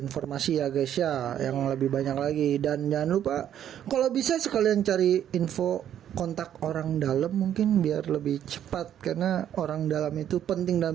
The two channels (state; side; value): quieter; left; 10.3 dB